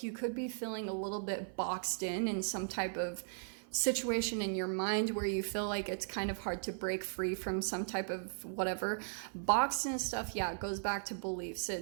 you could be feeling a little bit boxed in some type of situation in your mind where you feel like it's kind of hard to break free from some type of whatever. Boxed and stuff, yeah, it goes back to beliefs.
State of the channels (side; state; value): left; silent; 53 dB below the other